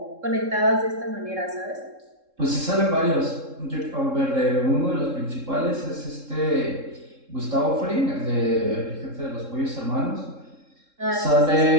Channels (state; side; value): late; left; 3.7 ms